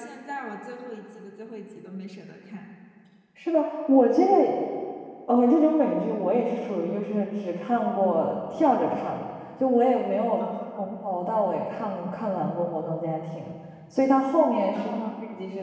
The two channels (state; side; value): identical; both; correlation 1.00